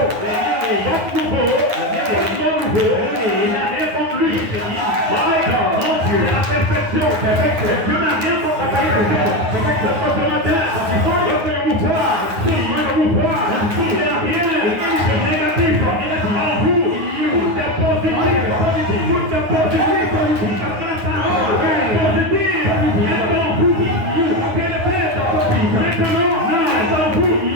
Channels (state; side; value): late; left; 9.5 ms